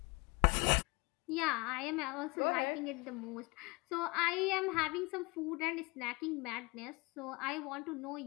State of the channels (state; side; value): quieter; right; 26.5 dB